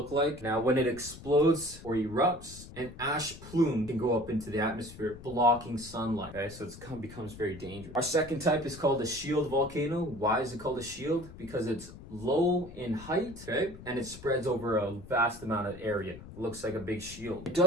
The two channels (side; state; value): left; noise; rumble, 15 dB below the sound